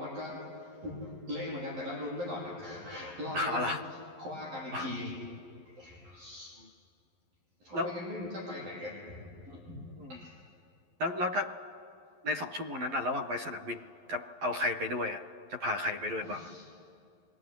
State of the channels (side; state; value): left; late; 11 ms